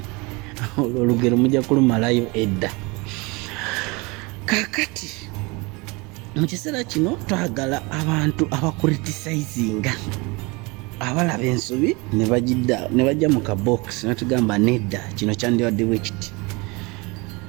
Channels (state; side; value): quieter; left; 26.4 dB